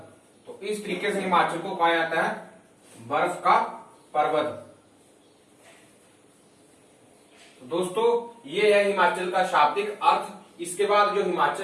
तो इस तरीके से हिमाचल को कहा जाता है बर्फ का पर्वत। तो दोस्तों, ये है हिमाचल का शाब्दिक अर्थ। इसके बाद जो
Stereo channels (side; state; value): both; identical; correlation 1.00